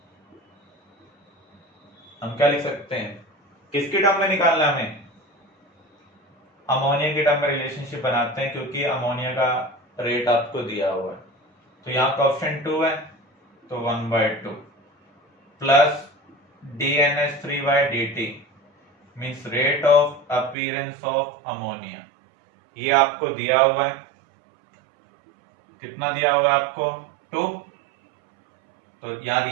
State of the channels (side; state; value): left; drops out; at 20.6 s